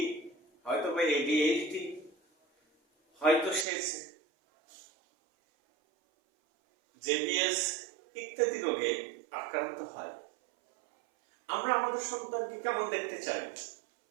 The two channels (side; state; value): left; drops out; at 3.7 s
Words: হয়তোবা ADHD, হয়তো সে JBS ইত্যাদি রোগে আক্রান্ত হয়। আমরা আমাদের সন্তানকে কেমন দেখতে চাই?